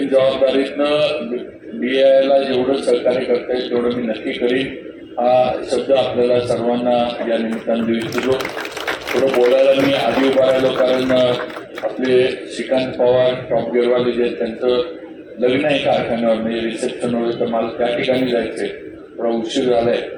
जबाबदारीतनं BIला जेवढं सहकार्य करता येईल तेवढं मी नक्की करीन हा शब्द आपल्याला सर्वांना या निमित्तानं देऊ इच्छितो. थोडं बोलायला मी आधी उभा राहिलो कारण आपले श्रीकांत पवार टॉप गेअरवाले जे आहेत त्यांचं लग्न आहे कारखान्यावर म्हणजे रिसेप्शनवर तर मला त्या ठिकाणी जायचं आहे थोडा उशीर झाला आहे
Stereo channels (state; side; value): identical; both; correlation 1.00